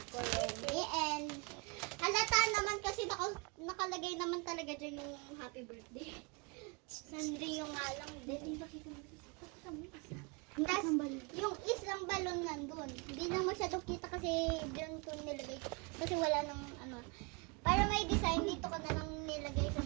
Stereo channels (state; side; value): quieter; left; 31.1 dB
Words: Kuromi, and halata naman kasi nakalagay naman talaga dyan yung happy birthday. Sandri yung nga lang din. Tapos yung islang balon nandun. Hindi na masyadong kita kasi dyan ko nilagay. Kasi wala nang ano. Para may design, dito ko na lang nilagay sa